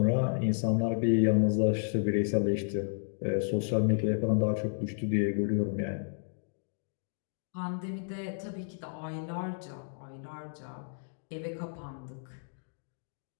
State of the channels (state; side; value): silent; right; digital silence